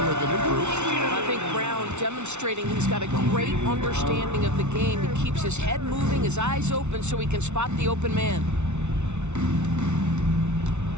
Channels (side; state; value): left; late; 0.82 ms